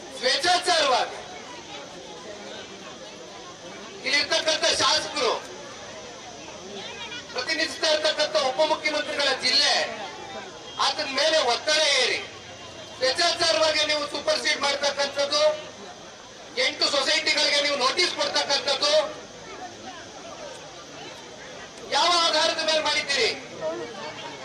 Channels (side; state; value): both; identical; correlation 1.00